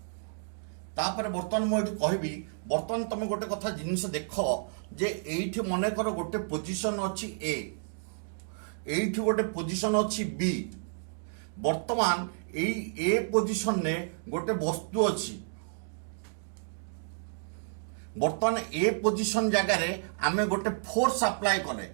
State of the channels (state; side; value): silent; left; digital silence